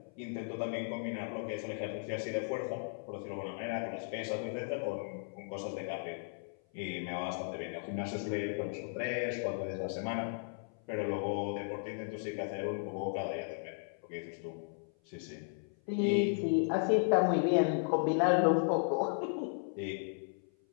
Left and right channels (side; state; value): right; silent; 54 dB below the other